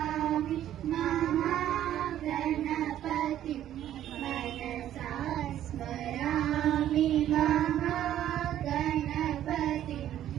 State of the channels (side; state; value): left; quieter; 11.7 dB